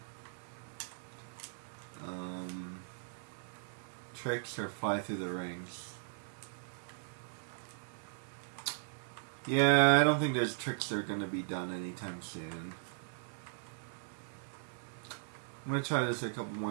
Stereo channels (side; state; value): left; silent; digital silence